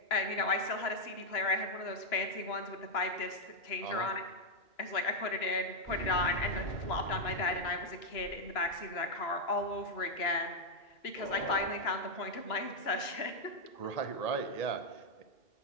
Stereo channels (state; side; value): late; right; 2.9 ms